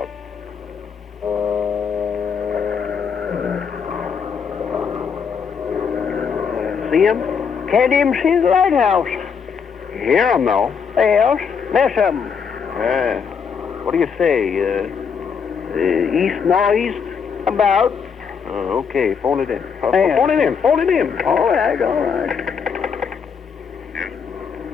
See him? Can't even see the lighthouse. Hear him, though. Yes, miss him. What do you say? East, northeast, about. Oh, okay, phone it in. Yeah. Phone it in. All right, all right.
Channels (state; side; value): quieter; right; 6.4 dB